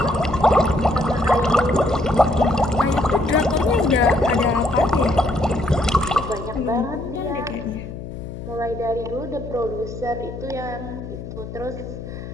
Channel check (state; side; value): noise; left; hum, 10 dB below the sound